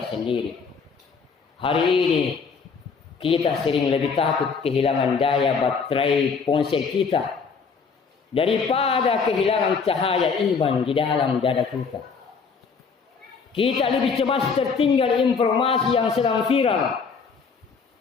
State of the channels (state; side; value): quieter; right; 5.4 dB